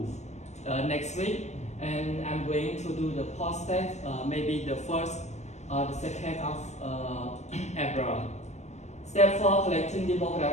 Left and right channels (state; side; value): late; right; 0.33 ms